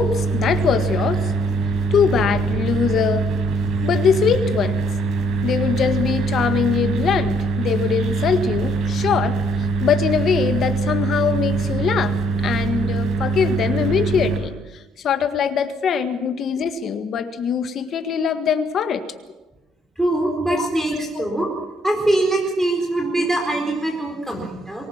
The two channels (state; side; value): normal; both; correlation 0.67